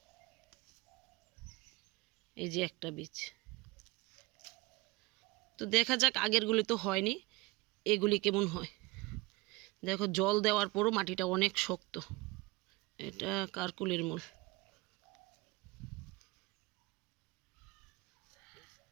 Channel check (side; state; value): left; quieter; 22.6 dB